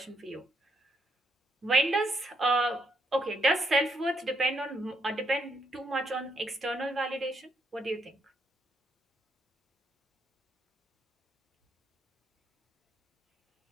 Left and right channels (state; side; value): normal; both; correlation 0.76